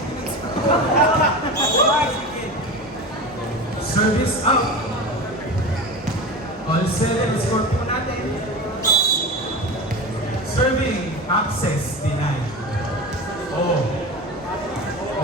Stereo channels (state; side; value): normal; both; correlation 0.28